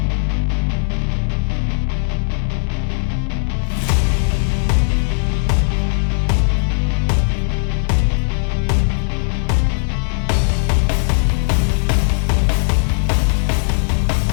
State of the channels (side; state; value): right; silent; 60 dB below the other